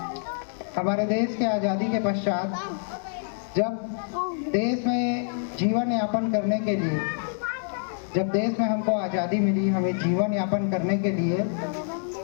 हमारे देश के आज़ादी के पश्चात जब देश में जीवन यापन करने के लिए, जब देश में हमको आज़ादी मिली, हमें जीवन यापन करने के लिए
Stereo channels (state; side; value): silent; right; 61 dB below the other